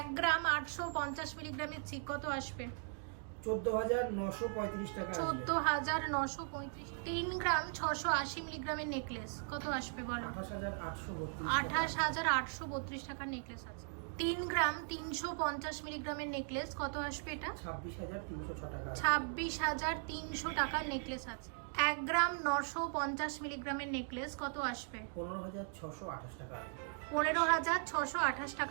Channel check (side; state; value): left; silent; 52 dB below the other